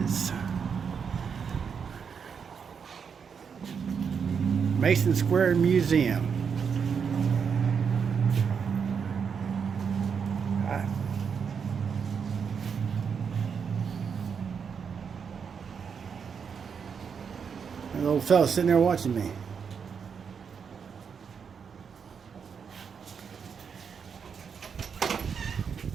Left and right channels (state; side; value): quieter; left; 6.5 dB